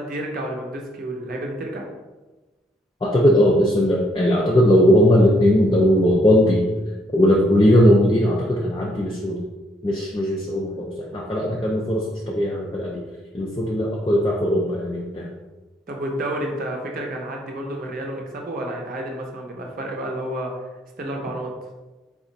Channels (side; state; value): both; normal; correlation 0.71